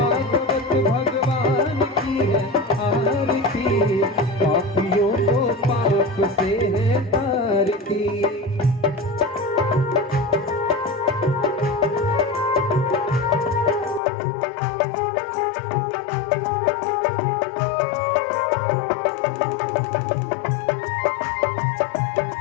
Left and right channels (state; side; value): drops out; right; at 14.0 s